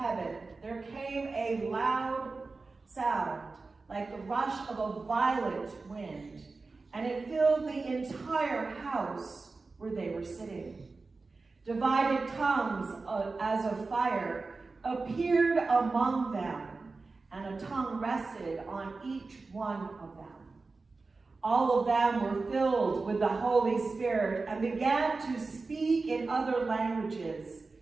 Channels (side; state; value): left; quieter; 3.9 dB